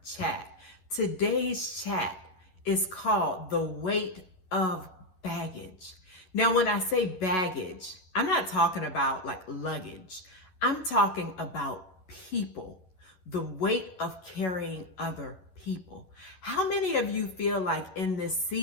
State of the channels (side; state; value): right; late; 11 ms